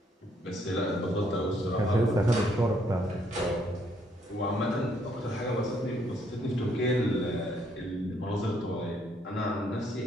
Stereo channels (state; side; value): normal; both; correlation 0.70